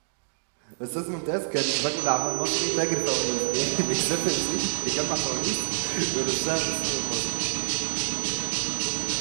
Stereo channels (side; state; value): left; silent; digital silence